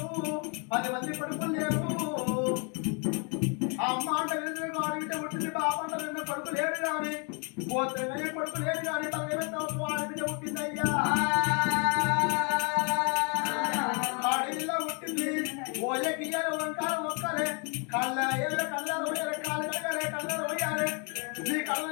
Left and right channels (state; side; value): quieter; right; 35.7 dB